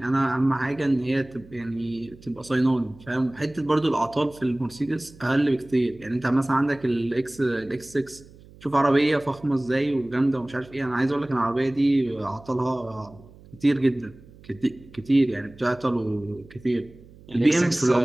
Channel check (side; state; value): right; noise; hum, 23 dB below the sound